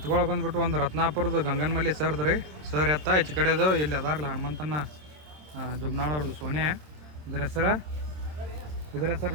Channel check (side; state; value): left; late; 26 ms